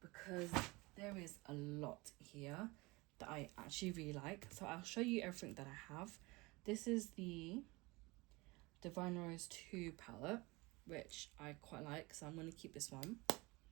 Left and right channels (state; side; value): quieter; left; 23.7 dB